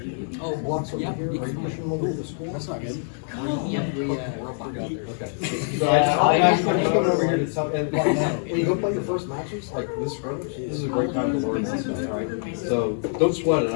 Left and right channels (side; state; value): right; silent; digital silence